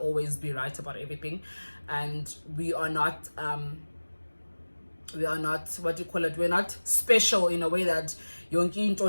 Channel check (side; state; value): both; inverted; correlation -1.00